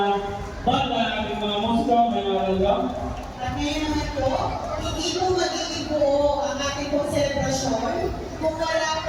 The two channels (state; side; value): identical; both; correlation 1.00